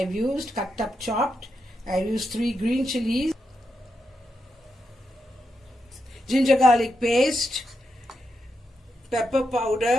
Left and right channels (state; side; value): normal; both; correlation 0.85